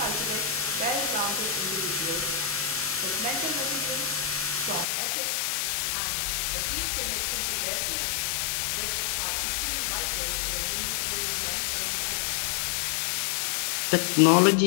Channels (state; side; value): drops out; right; at 4.9 s